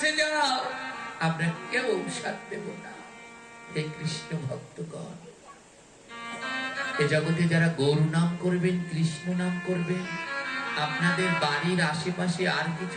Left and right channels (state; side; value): identical; both; correlation 1.00